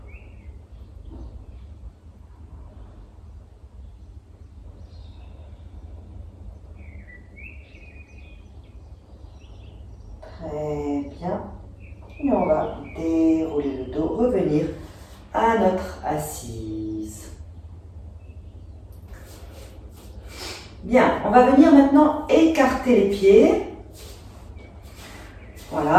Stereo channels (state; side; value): identical; both; correlation 1.00